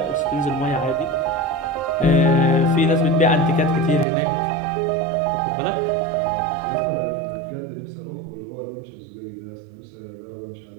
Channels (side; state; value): left; drops out; at 4.0 s